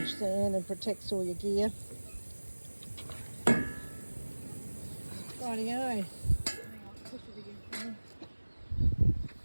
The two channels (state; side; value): inverted; both; correlation -1.00